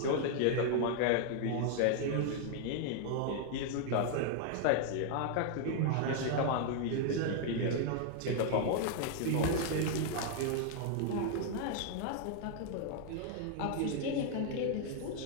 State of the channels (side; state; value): both; different; correlation 0.00